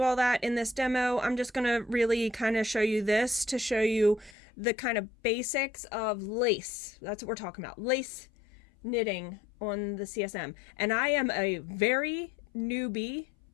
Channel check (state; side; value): drops out; right; at 4.4 s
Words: all that in this demo. I'm just going to really kind of show you this to show you the kind of basics of lace. That's what we're talking about, lace knitting on the CSM. And I am a very newbie